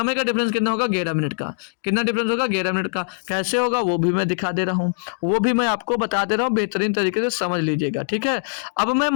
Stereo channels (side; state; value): right; silent; digital silence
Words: का डिफरेंस कितना होगा? 11 मिनट का। कितना डिफरेंस होगा? 11 मिनट का। कैसे होगा वो भी मैं दिखा दे रहा हूँ, वो भी मैं आपको बता दे रहा हूँ, बेहतरीन तरीके से समझ लीजिएगा, ठीक है। अब मैं